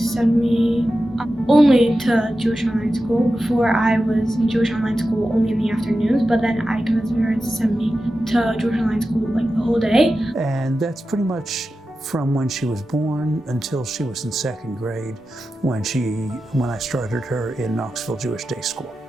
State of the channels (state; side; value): normal; both; correlation 0.92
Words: me only to Jewish online school. Before I was in Jewish online school only in the afternoons, but then I convinced my parents to send me to Jewish online school like the whole day. And that's pretty much from when she was born until she was in second grade when I started her in Knoxville Jewish Day School.